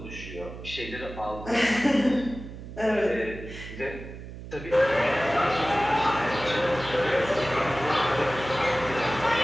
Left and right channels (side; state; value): right; noise; hum, 12 dB below the sound